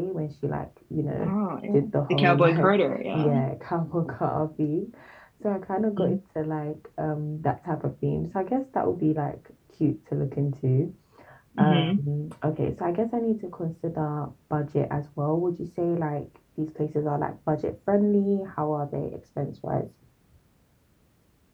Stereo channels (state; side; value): identical; both; correlation 1.00